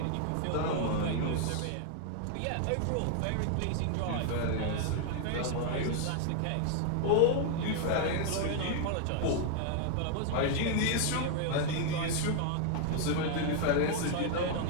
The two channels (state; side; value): different; both; correlation 0.00